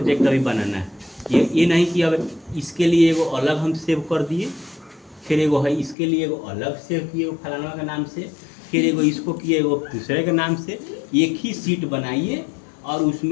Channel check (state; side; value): drops out; right; at 6.0 s